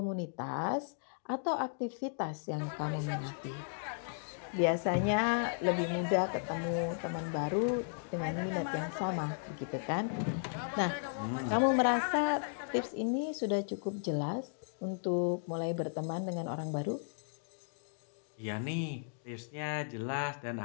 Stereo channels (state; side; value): silent; right; digital silence